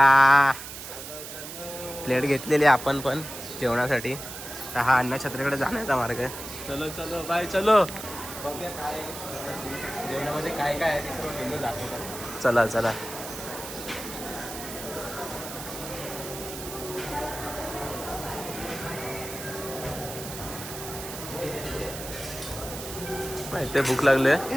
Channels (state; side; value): noise; right; hiss, 10 dB below the sound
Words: प्लेट घेतलेली आपण पण जेवणासाठी. तर हा अन्नछत्रीकडे जाण्याचा मार्ग आहे. चलो चलो बाय चलो. बघूया काय जेवणामध्ये काय काय आहे ते सर्व मेनू दाखवतो. चला चला. माहिती भूक लागले.